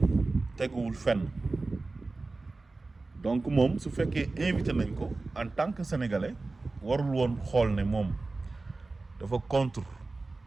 teguwul fenn. donc moom su fekkee invité nañ ko en tant que sénégalais warul woon xool ne moom dafa contre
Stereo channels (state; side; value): quieter; left; 3.4 dB